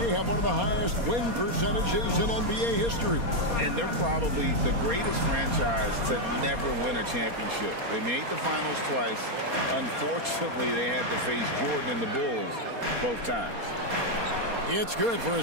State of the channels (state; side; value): late; left; 4.2 ms